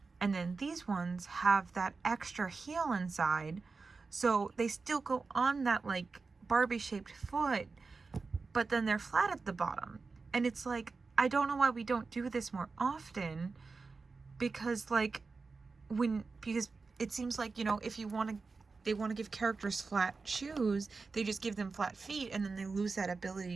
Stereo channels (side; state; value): left; quieter; 4.3 dB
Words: and then these ones have that extra heel inside, so they still go on that Barbie shaped foot, but then they're flat at the bottom. And it's I don't know why we don't do this more often, because like because it seems like, you know, if you want to, they want to give characters flat shoes, they just give them flat feet, and then they lose that